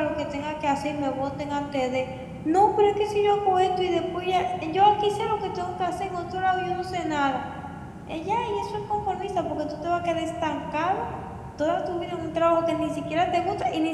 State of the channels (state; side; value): identical; both; correlation 1.00